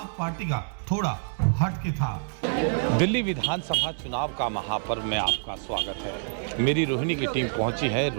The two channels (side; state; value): left; silent; 58 dB below the other